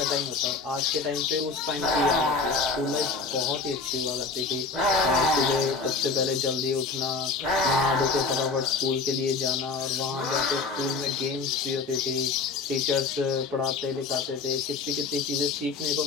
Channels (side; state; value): right; quieter; 4.3 dB